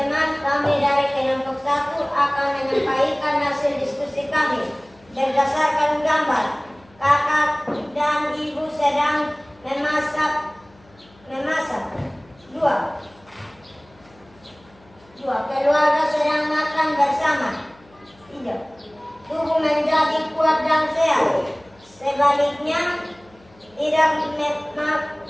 kami dari kelompok 1 akan menyampaikan hasil diskusi kami berdasarkan gambar. Kakak dan ibu sedang memasak. Dua. Keluarga sedang makan bersama. 3. Tubuh menjadi kuat dan sehat. Sebaliknya, tidak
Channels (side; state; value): left; noise; hum, 29 dB below the sound